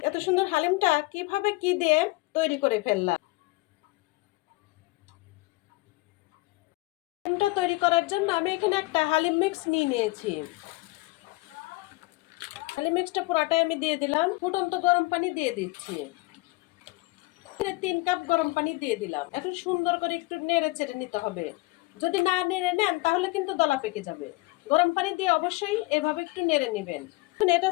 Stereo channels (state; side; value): quieter; right; 22.3 dB